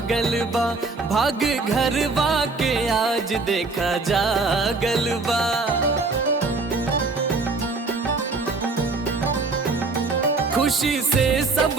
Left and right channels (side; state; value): left; quieter; 3.8 dB